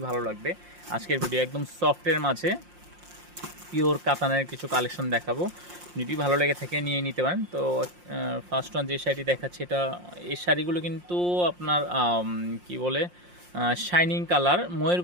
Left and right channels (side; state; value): left; late; 5.6 ms